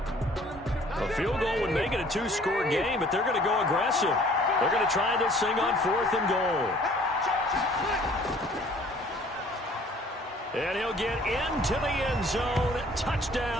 Field goal would make it a 2-score game, but they're going to go aggressive. They're going to try this thing on fourth and goal. And he'll get into the end zone.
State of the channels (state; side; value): normal; both; correlation 0.55